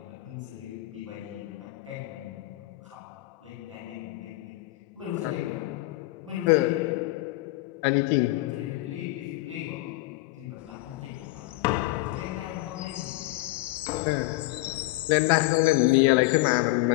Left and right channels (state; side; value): quieter; right; 20.2 dB